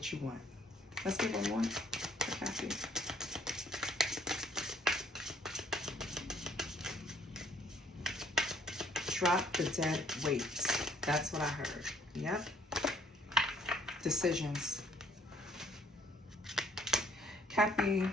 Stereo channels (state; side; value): normal; both; correlation 0.63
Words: you want. Let's get one more for Kathy. Drop the dead weight. That's what I heard. Yep. Decisions. Cappy,